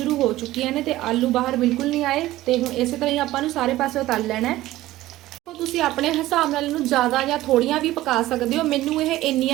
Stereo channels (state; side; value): quieter; left; 16.1 dB